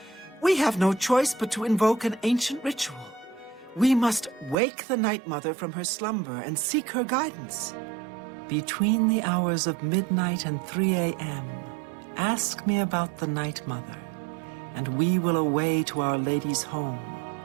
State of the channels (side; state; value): left; drops out; at 4.5 s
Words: we have no choice but to invoke an ancient ritual. We must wake the Night Mother from her slumber and seek her guidance. Between the hours of midnight and 3 a.m., ask me about the Night Mother, and we will away to Our Lady's home.